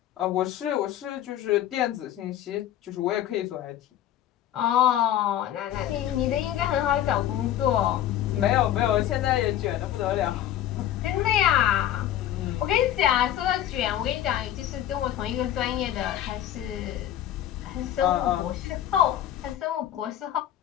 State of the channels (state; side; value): quieter; right; 11.9 dB